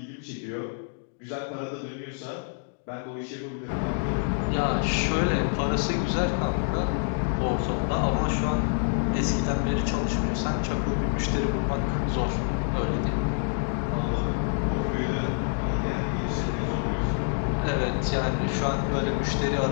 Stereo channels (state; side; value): silent; right; digital silence